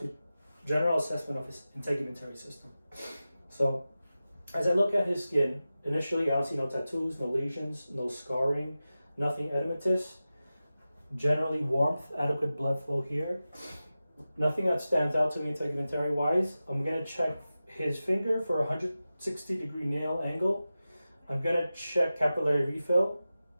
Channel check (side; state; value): both; inverted; correlation -0.94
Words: general assessment of his integumentary system. So, as I look at his skin, initially I don't see no tattoos, no lesions, no scarring, nothing edematous. Generally warmth, adequate blood flow here. Nothing that stands out to me integumentary wise. I'm going to check his finger for a 160-degree nail angle. I'm going to check capillary refill,